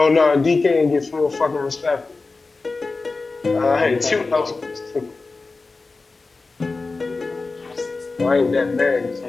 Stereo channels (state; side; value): quieter; right; 3.8 dB